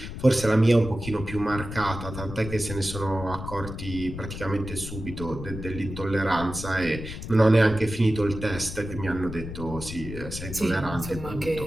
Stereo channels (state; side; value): noise; left; rumble, 9 dB below the sound